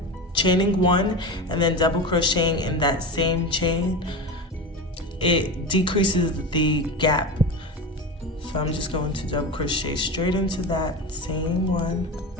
chaining 1 and then double crocheting in that same chain, it decreases the gap. So I'm just going to double crochet straight into that same one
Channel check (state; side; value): normal; both; correlation 0.25